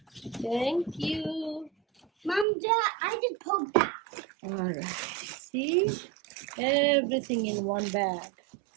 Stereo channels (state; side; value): drops out; left; at 2.5 s